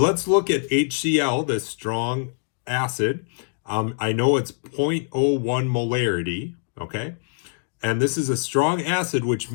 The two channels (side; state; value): right; silent; 60 dB below the other